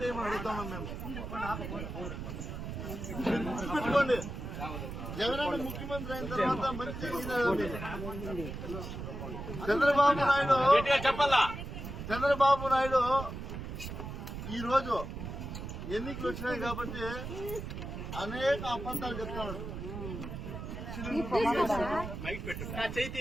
అడుగుతామని మేము గుర్తుపెట్టుకోండి. జగనన్న ముఖ్యమంత్రి అయిన తర్వాత మంచి చంద్రబాబు నాయుడు ఈ రోజు ఎన్నికలు వచ్చినాయి కాబట్టి అనేక అబద్ధాలు చెప్తాడు.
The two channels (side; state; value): right; noise; rumble, 7 dB below the sound